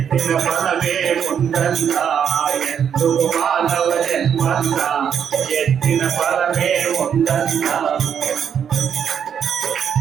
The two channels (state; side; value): quieter; left; 8.1 dB